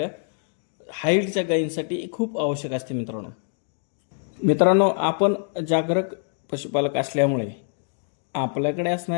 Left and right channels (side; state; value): right; silent; 56 dB below the other